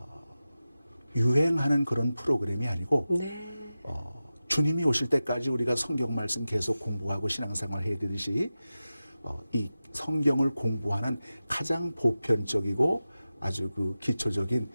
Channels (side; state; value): both; inverted; correlation -0.94